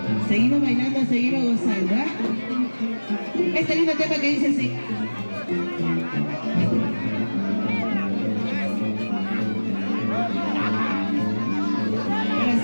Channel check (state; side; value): inverted; both; correlation -1.00